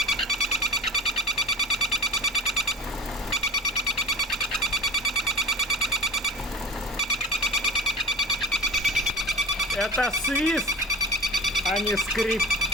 Это свист, а не скрип.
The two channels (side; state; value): both; normal; correlation 0.31